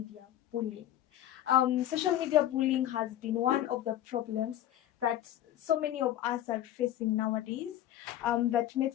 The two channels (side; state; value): right; quieter; 12.6 dB